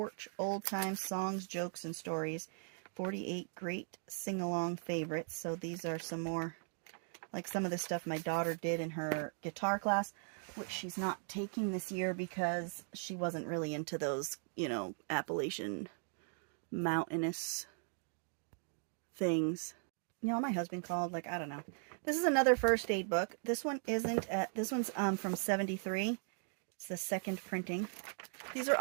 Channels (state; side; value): silent; left; 52 dB below the other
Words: Old Time Songs, Jokes, and Stories. 48 Great Sing-Along Favorites. So these are some more, like some of the stuff my daughter did in her guitar class, which she's not taking this year because she wasn't really into those, you know, Appalachian mountainous things. you know, my husband called, like, I don't know. This is another first aid book. This one isn't, this one's from 73. It's the second printing. These are